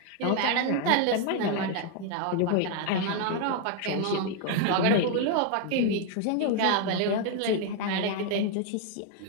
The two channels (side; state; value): both; different; correlation 0.00